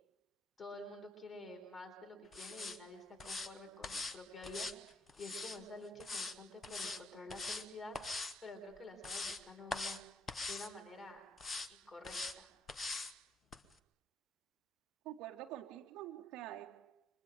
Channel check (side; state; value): both; normal; correlation 0.70